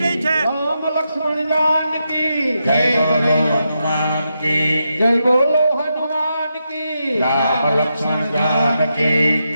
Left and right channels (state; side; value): inverted; both; correlation -0.85